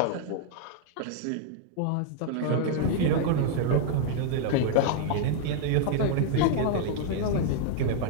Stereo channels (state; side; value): different; both; correlation -0.01